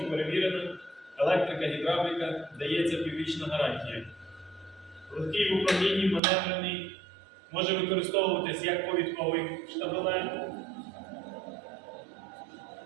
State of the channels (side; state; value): left; drops out; at 6.2 s